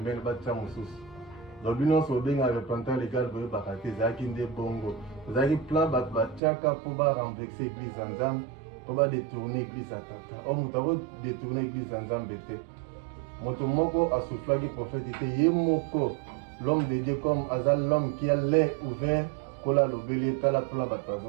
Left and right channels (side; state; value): left; drops out; at 6.4 s